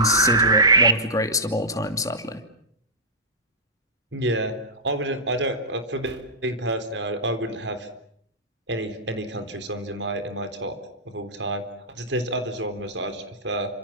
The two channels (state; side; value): normal; both; correlation -0.13